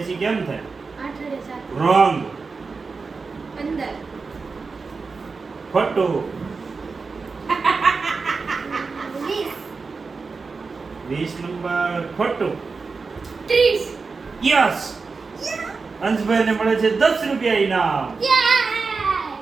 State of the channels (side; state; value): left; quieter; 4.5 dB